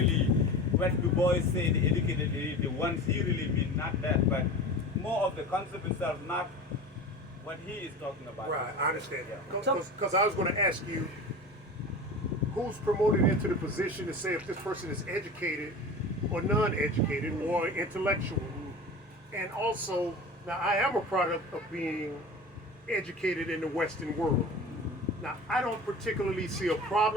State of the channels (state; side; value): normal; both; correlation 0.33